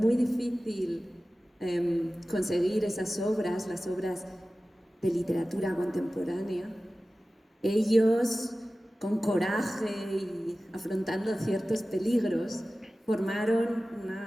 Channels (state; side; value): normal; both; correlation 0.96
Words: difícil conseguir esas obras, las obras de literatura contemporánea. Ellos, con coraje y afrontando ciertos peligros, formaron